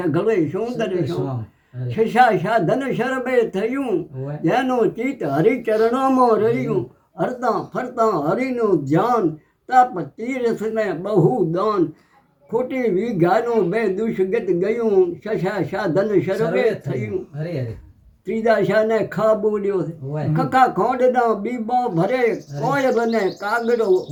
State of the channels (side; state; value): both; identical; correlation 1.00